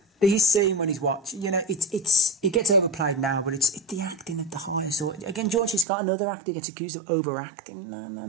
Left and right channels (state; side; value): drops out; left; at 5.9 s